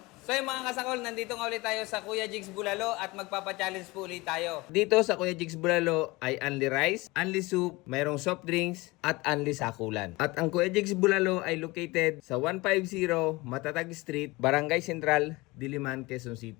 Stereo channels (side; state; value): right; quieter; 22.6 dB